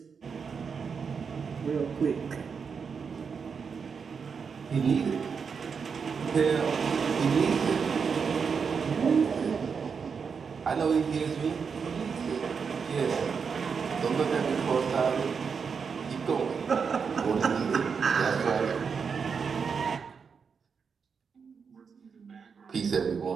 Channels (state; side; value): quieter; left; 6.0 dB